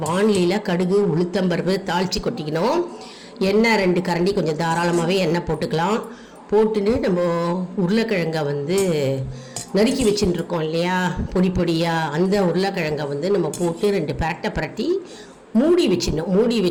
வானிலையில் கடுகு உளுத்தம்பருப்பு தாளித்து கொட்டிக்கணும். எண்ணெய் 2 கரண்டி, கொஞ்சம் தாராளமாகவே எண்ணெய் போட்டுக்கலாம். போட்டுன்னு நம்ம உருளைக்கிழங்கை நறுக்கி வச்சுட்டுருக்கோம் இல்லையா, பொடியாக அந்த உருளைக்கிழங்கை நம்ம போட்டு 2 பிரட்டி மூடி வச்சிடணும். மூடி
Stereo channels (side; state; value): both; identical; correlation 1.00